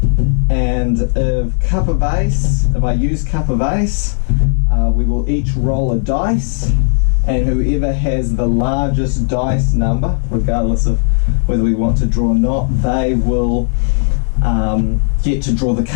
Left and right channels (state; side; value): silent; right; digital silence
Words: and if I use Cup of Ace, we will each roll a dice, and whoever has the largest dice number, regardless of whether we want to draw or not, they will get to draw the